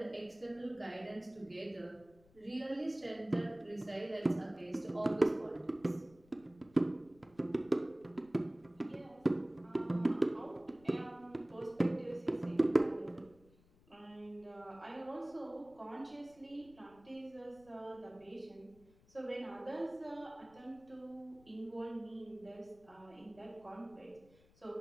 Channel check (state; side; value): noise; left; rumble, 27 dB below the sound